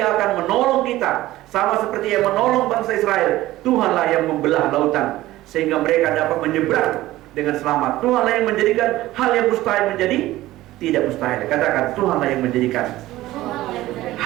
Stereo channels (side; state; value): left; quieter; 16.3 dB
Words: akan menolong kita, sama seperti yang menolong bangsa Israel. Tuhanlah yang membelah lautan sehingga mereka dapat menyeberang dengan selamat. Tuhanlah yang menjadikan hal yang mustahil menjadi tidak mustahil. Katakan, Tuhanlah yang menjadikan